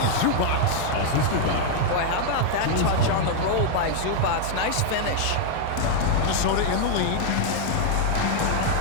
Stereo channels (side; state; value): both; different; correlation 0.00